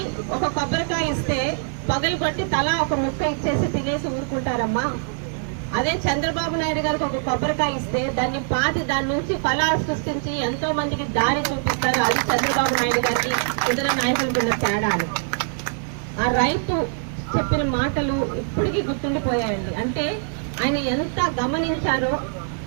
ఒక కొబ్బరికాయ ఇస్తే పగలు కొట్టి తలా ఒక ముక్క ఇచ్చేసి తినేసి ఊరుకుంటారమ్మా. అదే చంద్రబాబు నాయుడు గారికి ఒక కొబ్బరికాయ ఇస్తే దాన్ని పాతి దాని నుంచి ఫలాలు సృష్టించి ఎంతో మందికి దారి చూపిస్తారు. అది చంద్రబాబు నాయుడు గారికి ఇతర నాయకులకు ఉన్న తేడాలు. ఆ రైతు చెప్పిన మాటలు ఇప్పటికీ గుర్తుండిపోయాయండి. అంటే ఆయన ఎంత గమనించారో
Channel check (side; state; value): left; silent; digital silence